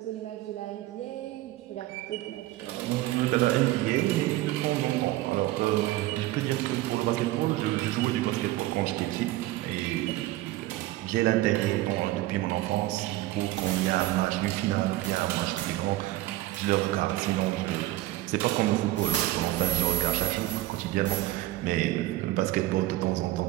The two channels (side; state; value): left; quieter; 16.4 dB